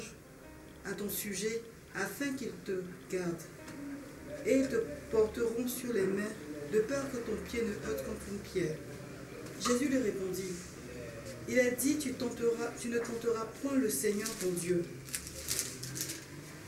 à ton sujet, afin qu'ils te gardent. Et ils te porteront sur les mains, de peur que ton pied ne heurte contre une pierre. » Jésus lui répondit, « Il est dit, tu ne tenteras point le Seigneur ton Dieu. »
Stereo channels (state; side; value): identical; both; correlation 1.00